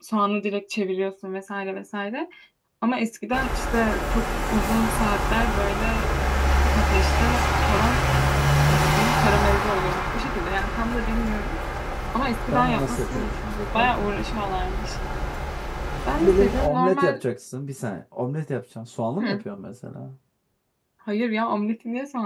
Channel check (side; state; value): both; identical; correlation 1.00